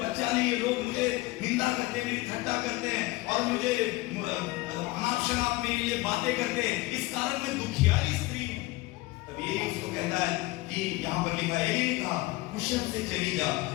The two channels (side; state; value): right; quieter; 20.7 dB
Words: नहीं है, लोग मुझे निंदा करते हैं, मेरी ठट्टा करते हैं, और मुझे अनाप शनाप मेरे लिए बातें करते हैं, इस कारण मैं दुखियारी स्त्री हूं। तब ये उसको कहता है कि यहाँ पर लिखा है, ये लिखा, कुशल से चली जा,